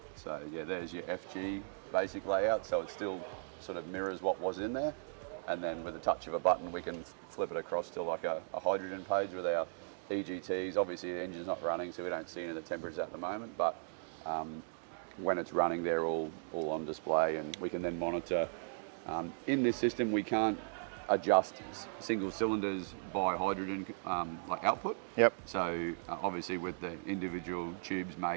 So yeah, there's your FG basic layout. So it still sort of mirrors what was in there. And then with a touch of a button, we can flip it across to like a hydrogen page with our EGTs. Obviously the engine's not running, so we don't see any of the temperatures at the moment, but when it's running, they're all on display, and we can then monitor. In this system, we can't adjust single cylinders by hydrogen like output. Yep. So obviously with the individual tubes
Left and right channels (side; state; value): left; silent; digital silence